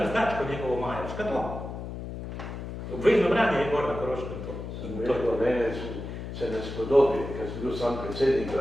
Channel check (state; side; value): noise; left; hum, 8 dB below the sound